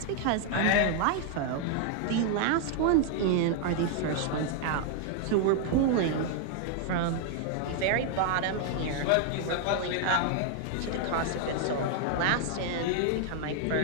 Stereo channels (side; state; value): both; different; correlation 0.00